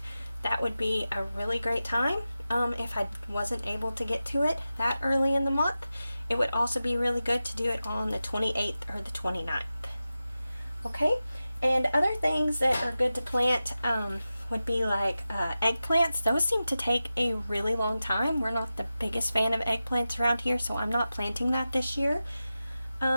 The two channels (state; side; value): inverted; both; correlation -0.93